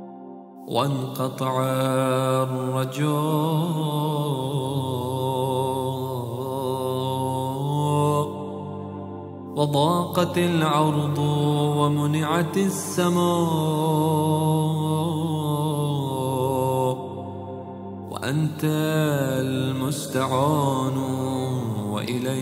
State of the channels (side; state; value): both; identical; correlation 1.00